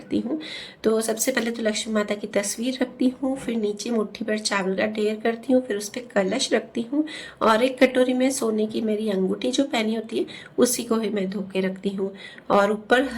हूँ। तो सबसे पहले तो लक्ष्मी माता की तस्वीर रखती हूँ, फिर नीचे मुट्ठी भर चावल का ढेर करती हूँ, फिर उस पर कलश रखती हूँ और एक कटोरी में सोने की मेरी अंगूठी जो पहनी होती है उसी को ही मैं धो के रखती हूँ। और ऊपर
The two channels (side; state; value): both; identical; correlation 1.00